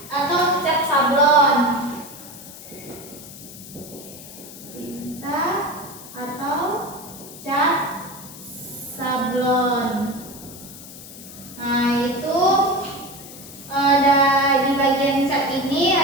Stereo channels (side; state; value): left; noise; hiss, 15 dB below the sound